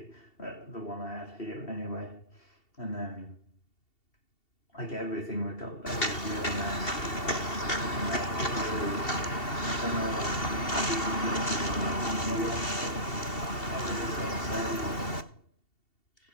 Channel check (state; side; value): late; right; 2.7 ms